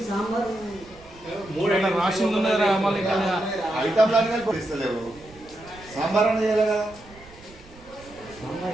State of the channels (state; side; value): noise; right; rumble, 22 dB below the sound